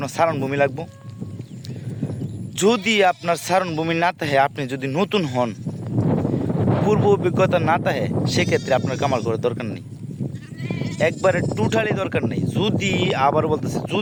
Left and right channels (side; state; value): both; identical; correlation 1.00